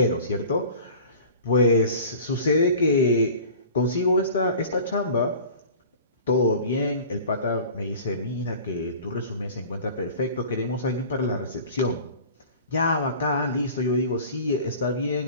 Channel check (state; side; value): inverted; both; correlation -0.42